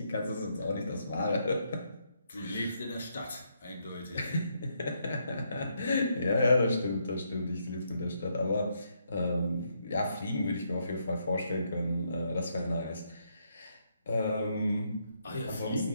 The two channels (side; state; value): both; inverted; correlation -0.76